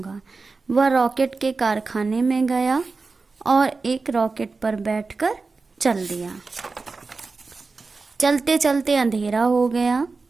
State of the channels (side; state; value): left; quieter; 4.1 dB